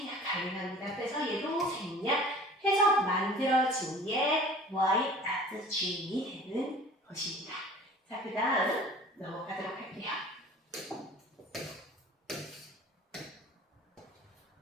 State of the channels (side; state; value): both; normal; correlation 0.45